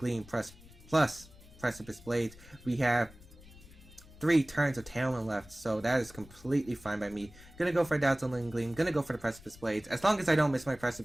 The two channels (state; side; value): noise; left; rumble, 21 dB below the sound